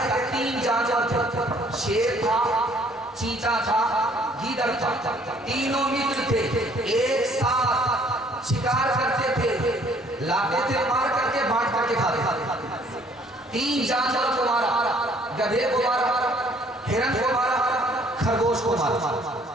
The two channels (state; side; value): normal; both; correlation 0.60